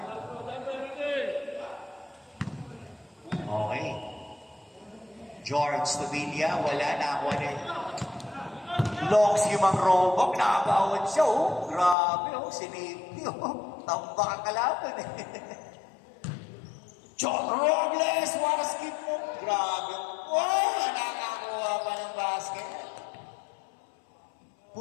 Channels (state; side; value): drops out; right; at 12.0 s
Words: Okay. George Tobilla, wala na ako rin. Longs yung mga robok, nakakawad siya, Grabe, sinipti, Tamba ka kalaban, John Robles, what a skip mo. Grabe. Nakakakuha pa ng basket.